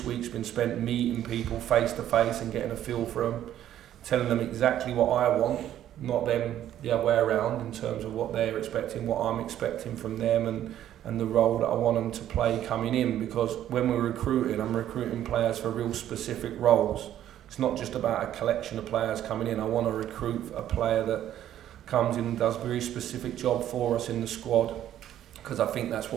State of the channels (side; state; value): left; quieter; 11.6 dB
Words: week's been spent meeting people face to face and getting a feel for them, telling them exactly what I want, not them the other way around in terms of what they're expecting, what I'm expecting from them, and the role that I want them to play coming in. Because when we're recruiting, I'm recruiting players for real specific roles. It's not just about a collection of players coming in. I want to recruit a player that comes in and does a very specific job for us in the squad, because I think that's